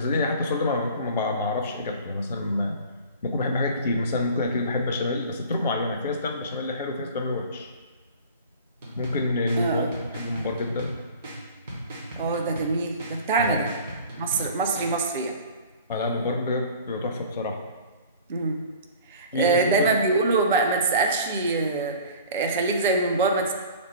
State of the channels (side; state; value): both; inverted; correlation -0.43